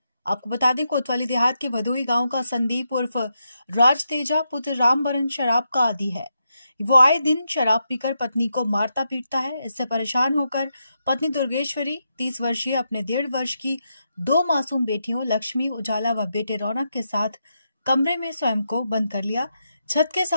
आपको बता दें, कोतवाली देहात के भदोही गांव का संदीप उर्फ राज तेजा पुत्र रामबरन शराब का आदी है। वो आए दिन शराब पीकर पत्नी को मारता पीटता है। इससे परेशान होकर पत्नी दुर्गेश्वरी 30 वर्षीय अपने 1.5 वर्ष की 2 मासूम बेटियों लक्ष्मी उजाला व बेटे रौनक के साथ कमरे में स्वयं को बंद कर लिया। छत के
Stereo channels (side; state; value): both; inverted; correlation -0.84